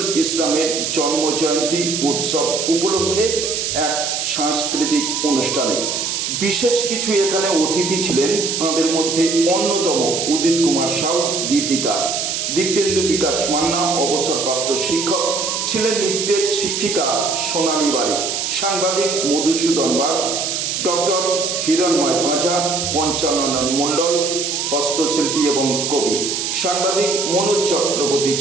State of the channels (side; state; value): right; noise; hiss, 1 dB below the sound